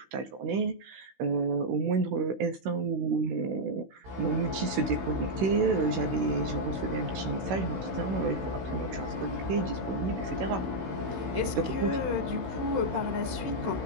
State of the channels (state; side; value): late; left; 16 ms